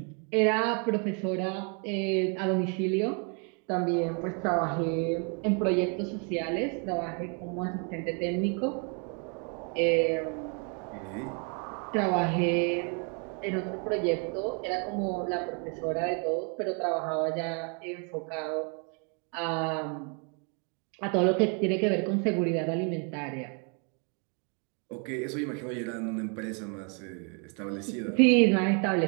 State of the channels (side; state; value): left; quieter; 37.8 dB